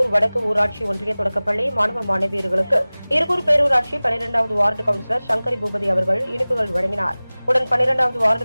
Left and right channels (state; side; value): inverted; both; correlation -0.99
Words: வடக்கு ஊராட்சி ஒன்றிய தொடக்கப்பள்ளி மாணவ மாணவியர்களுக்கு இருகூர் பேரூராட்சி 12வது வார்டு கவுன்சிலர் சங்கரி பூபதி அவர்கள் இனிப்புகள் வழங்கினார். உடன் 12வது